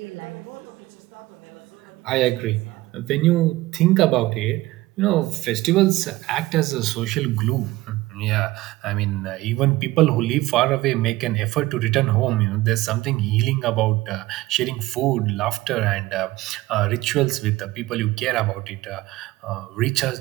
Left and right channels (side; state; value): left; quieter; 18.2 dB